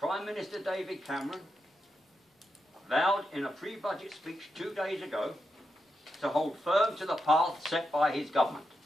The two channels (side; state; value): both; normal; correlation 0.86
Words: Minister David Cameron vowed in a pre-budget speech 2 days ago to hold firm to the path set by his government.